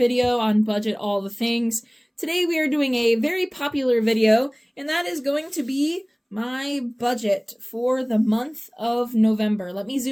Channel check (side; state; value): both; identical; correlation 1.00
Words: on Budget All the Things. Today we are doing a very popular video, and that is going to be my budget for the month of November. Let me